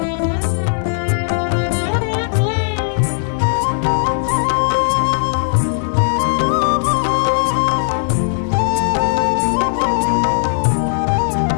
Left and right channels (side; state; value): right; silent; digital silence